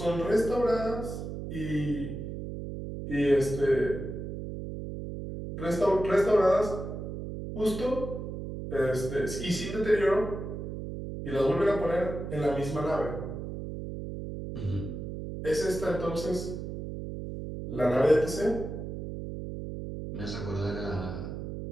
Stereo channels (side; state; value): right; noise; hum, 7 dB below the sound